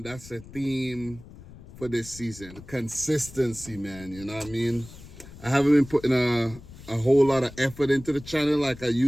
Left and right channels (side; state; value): left; noise; rumble, 17 dB below the sound